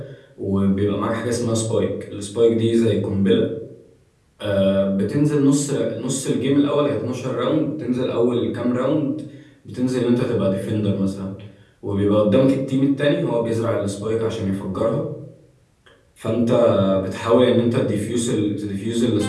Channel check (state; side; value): identical; both; correlation 1.00